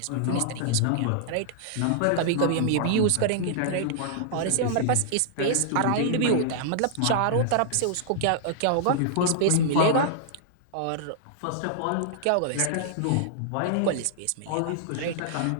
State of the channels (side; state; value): both; different; correlation -0.01